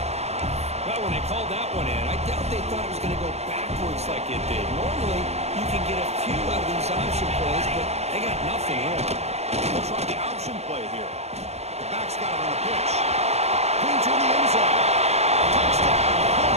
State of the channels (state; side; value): late; left; 0.31 ms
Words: Well, when they called that one in, I doubt they thought it was going to go backwards like it did. Normally, you can get a few out of these option plays, but they got nothing here. They'll try the option play here. The back's got it on the pitch. Clean to the end zone. Touchdown.